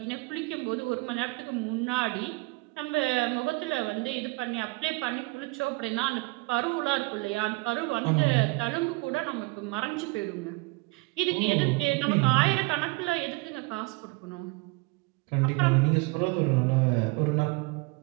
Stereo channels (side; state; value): left; quieter; 26.1 dB